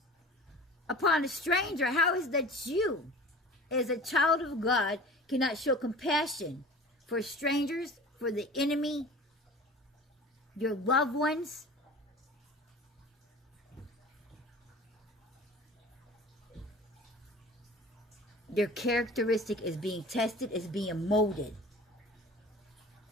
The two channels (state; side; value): normal; both; correlation 0.40